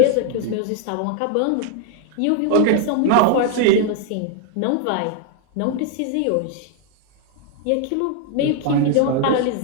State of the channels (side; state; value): both; different; correlation 0.00